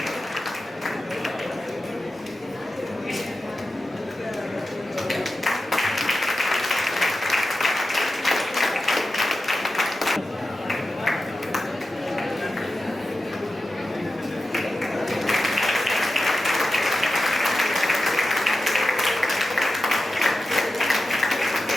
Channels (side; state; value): both; normal; correlation 0.92